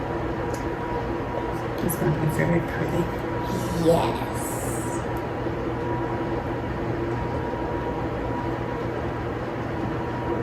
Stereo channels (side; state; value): both; identical; correlation 1.00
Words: It's going to be very pretty. Yes.